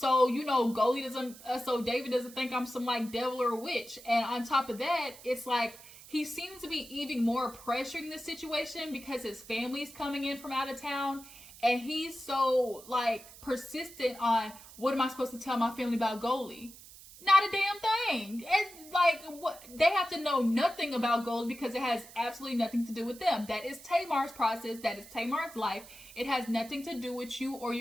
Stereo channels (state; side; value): noise; right; hiss, 18 dB below the sound